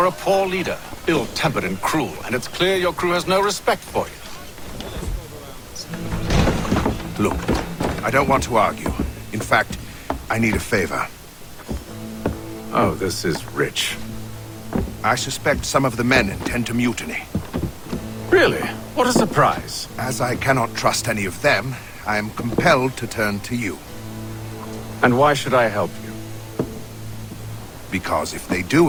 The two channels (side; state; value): both; identical; correlation 1.00